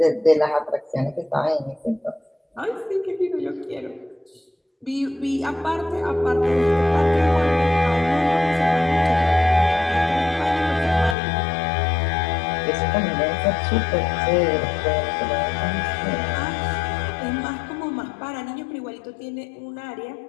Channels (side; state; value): right; drops out; at 11.2 s